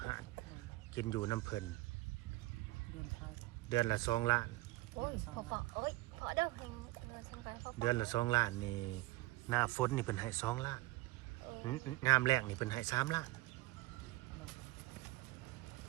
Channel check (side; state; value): left; quieter; 19.4 dB